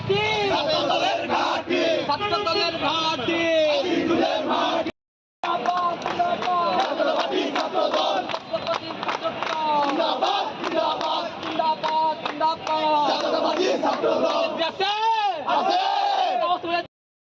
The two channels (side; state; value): both; identical; correlation 1.00